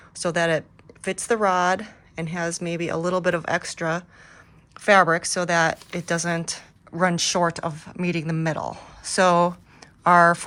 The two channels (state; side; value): identical; both; correlation 1.00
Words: so that it fits the rod and has maybe a little bit of extra fabric so that it doesn't run short of meeting the middle. So our